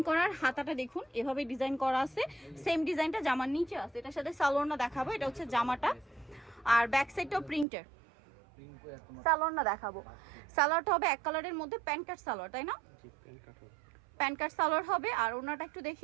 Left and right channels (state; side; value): drops out; left; at 7.7 s